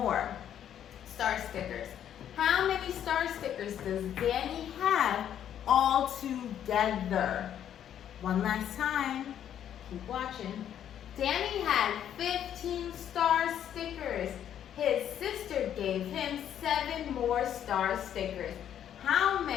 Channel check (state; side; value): quieter; right; 10.0 dB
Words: star stickers. How many star stickers does Danny have all together? One last time. Keep watching. Danny had 15 star stickers. His sister gave him 7 more star stickers. How